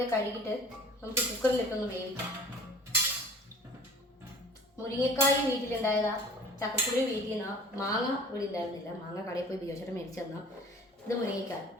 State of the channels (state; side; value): normal; both; correlation 0.46